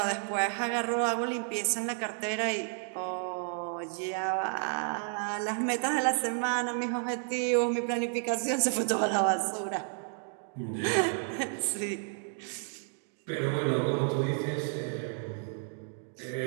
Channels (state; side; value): silent; left; 56 dB below the other